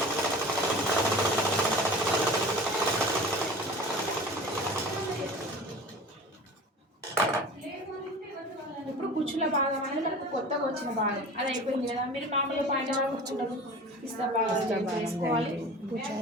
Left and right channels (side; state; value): both; normal; correlation 0.38